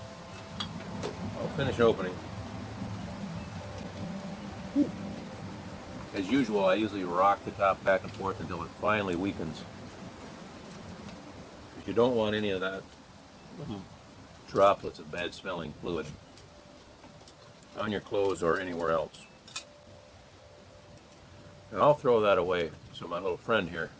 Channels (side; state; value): both; identical; correlation 1.00